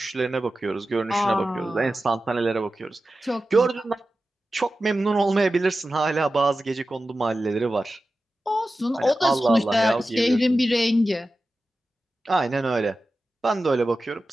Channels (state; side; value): normal; both; correlation 0.94